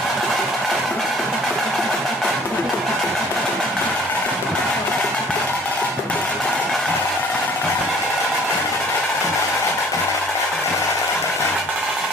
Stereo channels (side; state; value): both; normal; correlation 0.53